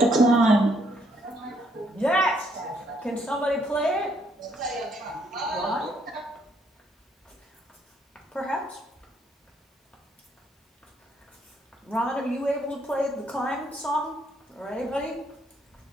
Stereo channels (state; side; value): normal; both; correlation 0.71